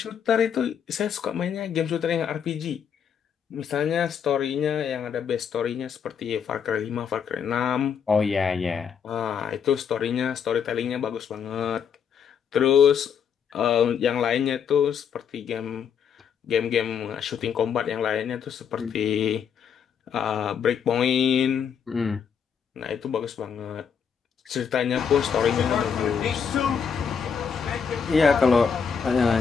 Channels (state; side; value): quieter; right; 7.2 dB